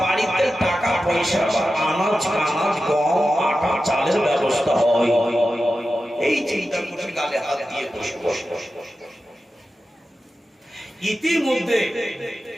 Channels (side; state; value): both; normal; correlation 0.92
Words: টাকা পয়সা বা আনাজ গম আটা চালের ব্যবস্থা হয়। এই চিন্তা করে গালে হাত দিয়ে বসে বসে